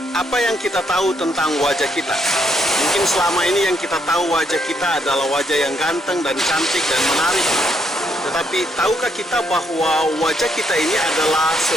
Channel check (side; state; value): both; normal; correlation 0.74